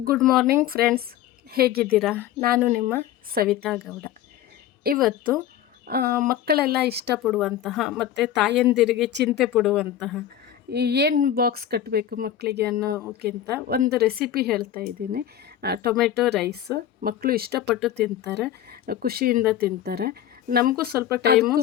ಗುಡ್ ಮಾರ್ನಿಂಗ್ ಫ್ರೆಂಡ್ಸ್, ಹೇಗಿದ್ದೀರಾ? ನಾನು ನಿಮ್ಮ ಸವಿತಾ ಗೌಡ. ಇವತ್ತು ಮಕ್ಕಳೆಲ್ಲ ಇಷ್ಟಪಡುವಂತಹ ಮತ್ತು ತಾಯಂದಿರಿಗೆ ಚಿಂತೆ ಪಡುವಂತಹ ಏನು ಬಾಕ್ಸ್ ಕಟ್ಟಬೇಕು ಮಕ್ಕಳಿಗೆ ಅನ್ನೋಕ್ಕಿಂತ ಒಂದು ರೆಸಿಪಿ ಹೇಳ್ತಾ ಇದ್ದೀನಿ. ಟೊಮೆಟೊ ರೈಸ್ ಮಕ್ಕಳು ಇಷ್ಟಪಟ್ಟು ತಿಂತಾರೆ, ಖುಷಿಯಿಂದ ತಿಂತಾರೆ. ನಮಗೂ ಸ್ವಲ್ಪ ಟೈಮು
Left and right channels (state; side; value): quieter; right; 11.1 dB